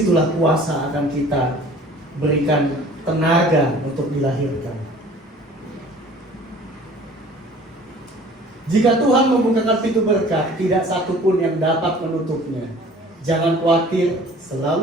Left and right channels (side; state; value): both; normal; correlation 0.49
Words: kuasa akan kita berikan tenaga untuk dilahirkan. Jika Tuhan membukakan pintu berkat, tidak satu pun yang dapat menutupnya. Jangan khawatir,